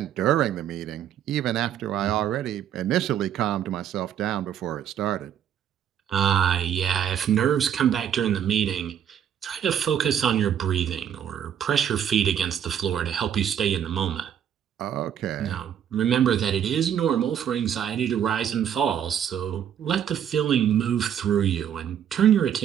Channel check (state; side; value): quieter; left; 9.3 dB